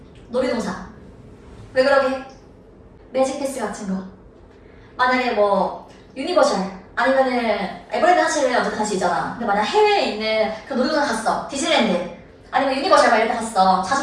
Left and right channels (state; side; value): identical; both; correlation 1.00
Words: 놀이동산. 왜 그러게? 매직 패스 같은 거. 만약에 뭐 유니버셜 아니면은 에버랜드 하체를 어쨌든 갈 수 있잖아. 근데 만약 해외에 있는 그 놀이동산 갔어. 디즈니랜드 아니면 유니버셜 막 이런 데 갔어.